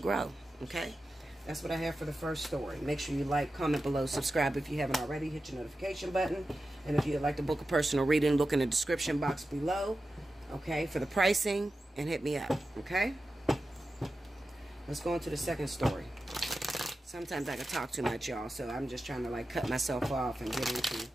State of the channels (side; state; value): both; normal; correlation 0.92